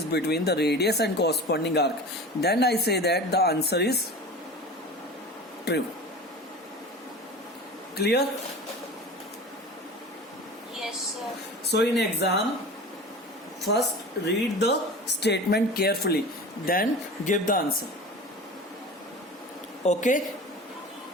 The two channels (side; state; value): both; normal; correlation 0.35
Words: between the radius and corresponding arc, then I say that the answer is true. Clear? Yes, sir. So in exam, first read the statement carefully, then give the answer. Okay?